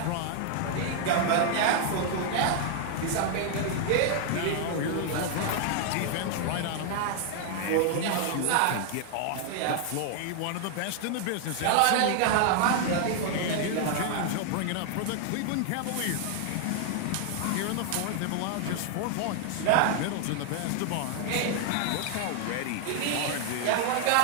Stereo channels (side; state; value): both; different; correlation 0.00